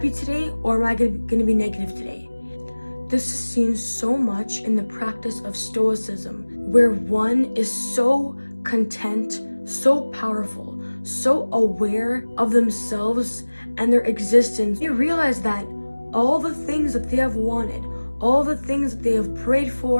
today or am I going to be negative today? This is seen so much in the practice of Stoicism, where one is so content, so powerful, so aware of themselves and their existence. They realize that all the things that they have wanted, all the things that they have prayed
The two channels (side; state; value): both; inverted; correlation -1.00